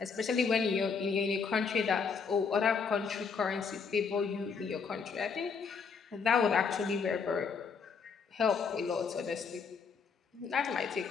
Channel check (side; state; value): right; quieter; 5.6 dB